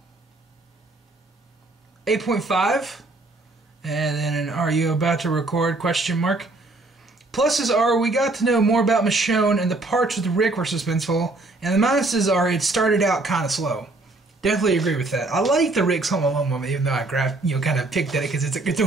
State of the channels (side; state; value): left; quieter; 3.1 dB